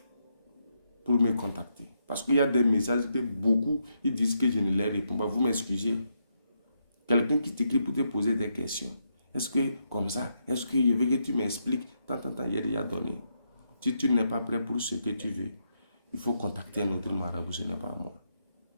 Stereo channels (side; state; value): both; inverted; correlation -0.80